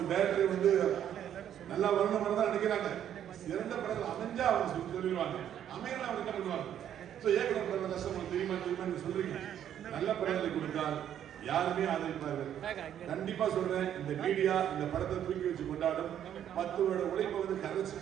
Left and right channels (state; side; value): quieter; left; 10.1 dB